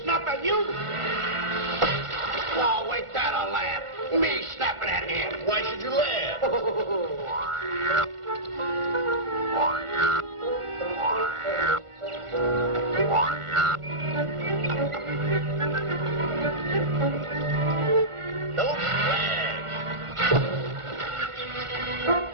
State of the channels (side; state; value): left; late; 1.5 ms